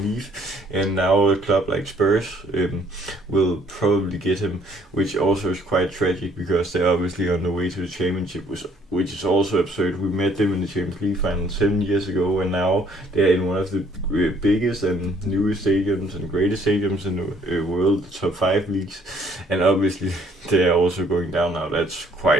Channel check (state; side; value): normal; both; correlation 0.62